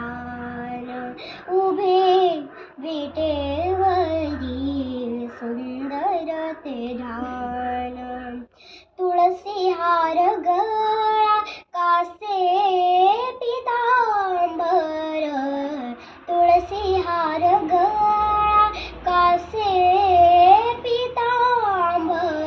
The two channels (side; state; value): both; identical; correlation 1.00